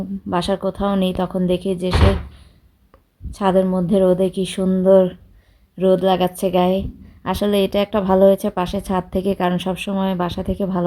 বাসার কোথাও নেই, তখন দেখি যে সে ছাদের মধ্যে রোদে কি সুন্দর রোদ লাগাচ্ছে গায়ে। আসলে এটা একটা ভালো হয়েছে পাশে ছাদ থেকে, কারণ সবসময় বাসা থেকে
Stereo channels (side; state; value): both; identical; correlation 1.00